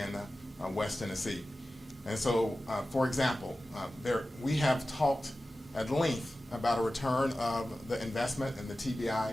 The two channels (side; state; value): both; normal; correlation 0.95